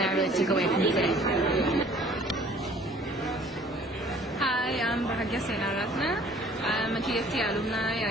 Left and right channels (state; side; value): normal; both; correlation 0.54